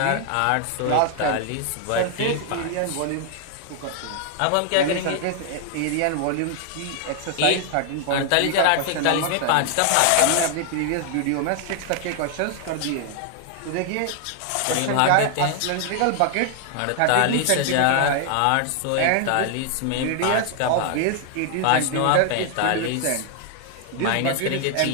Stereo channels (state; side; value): different; both; correlation 0.00